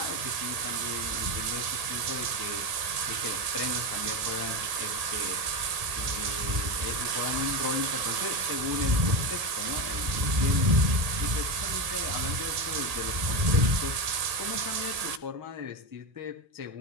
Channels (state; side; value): late; left; 1.7 ms